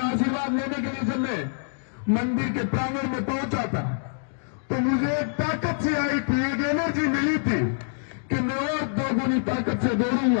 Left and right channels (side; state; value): right; silent; digital silence